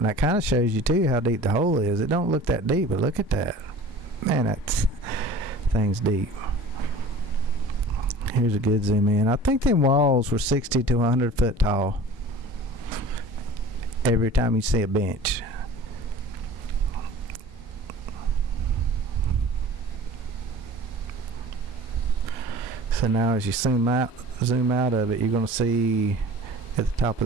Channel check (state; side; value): normal; both; correlation 0.42